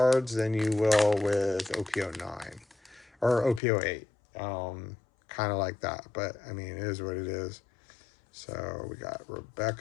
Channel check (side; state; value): right; drops out; at 3.6 s